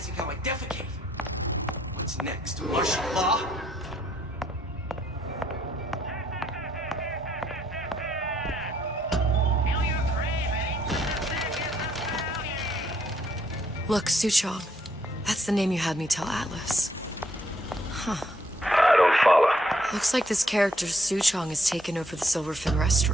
how I defecate. What's next? Martial law? Look, Suchong. That's the name you had me tell Atlas. Huh. I don't follow. Looks like this character Suchong has taken over the Silverfin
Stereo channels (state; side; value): normal; both; correlation 0.70